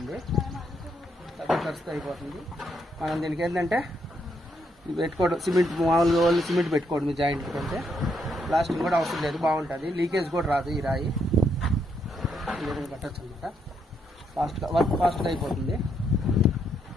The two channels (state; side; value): normal; both; correlation 0.76